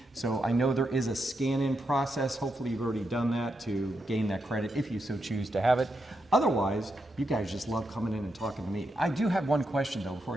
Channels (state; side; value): normal; both; correlation 0.84